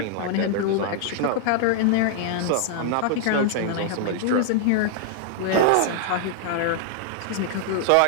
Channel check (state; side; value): different; both; correlation -0.01